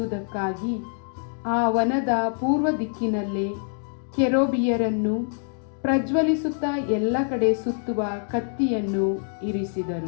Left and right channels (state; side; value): silent; right; digital silence